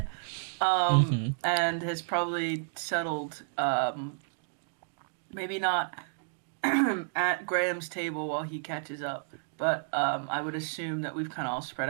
And has probably settled, maybe not at Graham's table while he catches up, but I would assume that we've kind of all spread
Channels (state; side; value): silent; left; digital silence